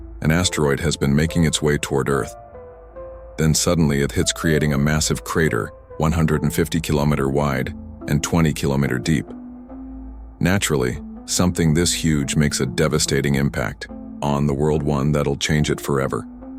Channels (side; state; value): both; identical; correlation 1.00